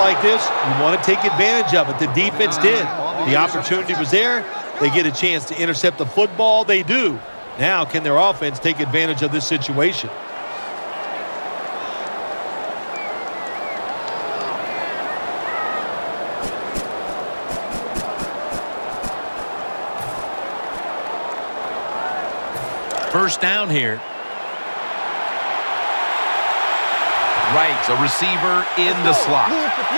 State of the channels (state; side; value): inverted; both; correlation -1.00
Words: this, you want to take advantage of it. The defense did. The opportunity was there. They get a chance to intercept the football. They do. Now, can their offense take advantage of this situation? First down here. Right, a receiver in the slot.